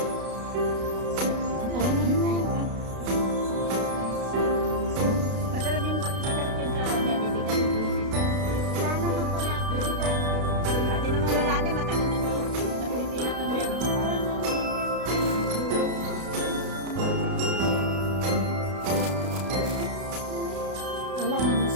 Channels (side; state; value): left; late; 32 ms